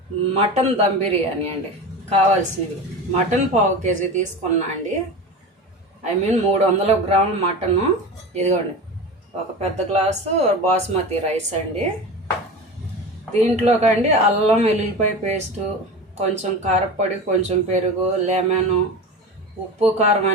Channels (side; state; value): both; normal; correlation 0.29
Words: మటన్ దమ్ బిర్యానీ అండి. కావాల్సినవి మటన్ పావు కేజీ తీసుకున్నా అండి. 300 గ్రాముల మటను. ఇదిగోండి, ఒక పెద్ద గ్లాసు బాస్మతి రైస్ అండి. దీంట్లోకండి అల్లం వెల్లుల్లిపాయ పేస్టు, కొంచెం కారపొడి, కొంచెం పెరుగు, లెమను, ఉప్పు, కారం